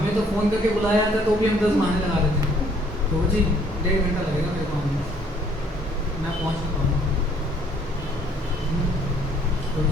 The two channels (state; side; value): normal; both; correlation 0.62